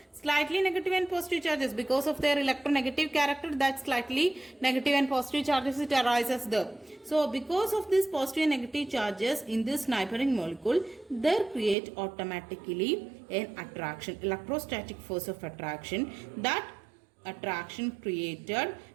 slightly negative and positive charges, because of their electronegative character, that slightly negative and positive charges, it arises there. So because of this positive and negative charges in this neighboring molecule, they create automatically an attraction, electrostatic force of attraction, that attraction created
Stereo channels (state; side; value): drops out; left; at 11.8 s